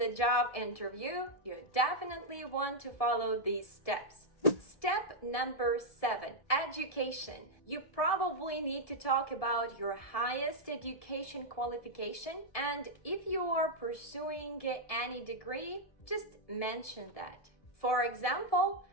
job interview, you definitely want to follow these steps. Step number 7, education. You probably need to talk about your highest education qualification, and if you are pursuing any degree, just mention that. For example,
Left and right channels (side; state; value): right; late; 1.7 ms